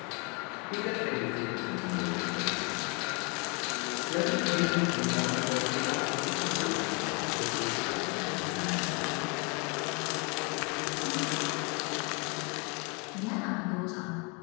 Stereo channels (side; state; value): right; quieter; 32.8 dB